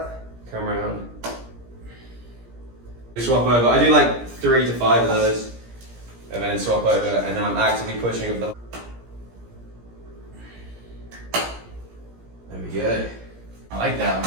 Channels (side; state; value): left; late; 17 ms